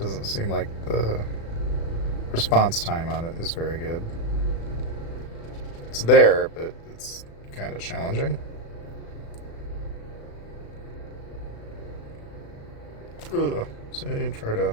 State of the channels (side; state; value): right; late; 36 ms